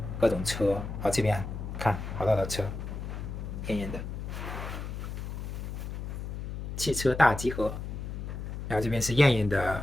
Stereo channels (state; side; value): noise; left; hum, 6 dB below the sound